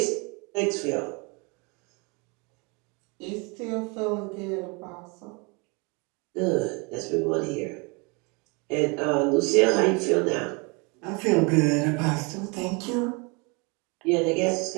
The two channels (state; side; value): quieter; left; 30.2 dB